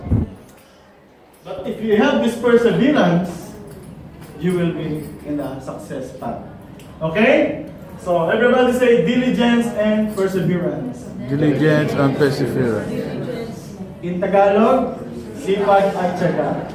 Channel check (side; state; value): both; identical; correlation 1.00